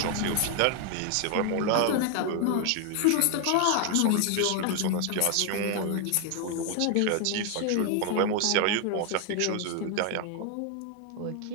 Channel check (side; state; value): both; different; correlation 0.00